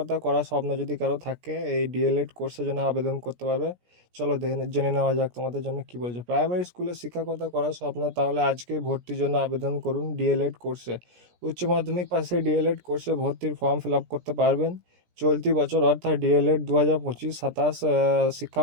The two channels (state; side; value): late; left; 17 ms